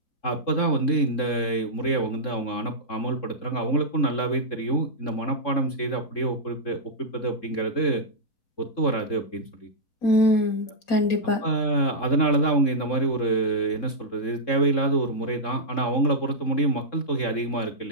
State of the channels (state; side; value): late; right; 3.7 ms